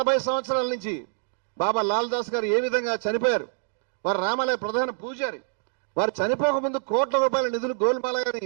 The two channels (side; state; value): left; silent; digital silence